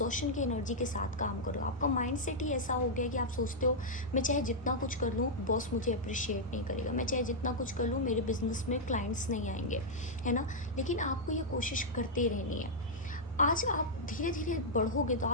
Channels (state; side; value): normal; both; correlation -0.06